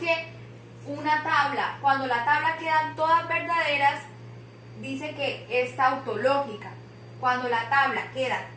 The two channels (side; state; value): both; identical; correlation 1.00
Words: una tabla, cuando la tabla quedan todas verdaderas, dice que es tautológica. Cuando la tabla queda